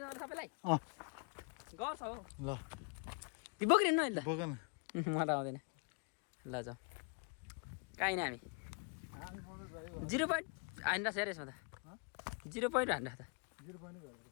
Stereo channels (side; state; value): right; quieter; 36.9 dB